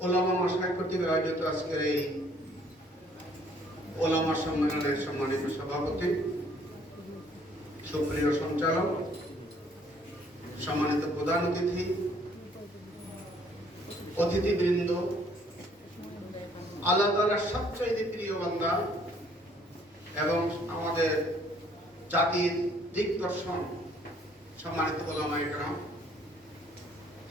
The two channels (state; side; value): normal; both; correlation 0.62